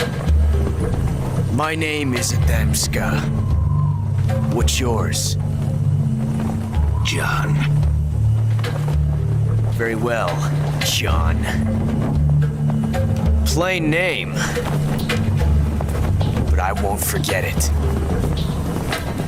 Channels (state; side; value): identical; both; correlation 1.00